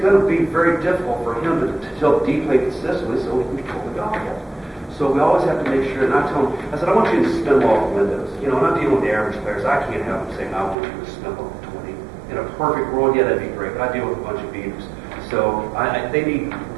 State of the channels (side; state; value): left; drops out; at 10.8 s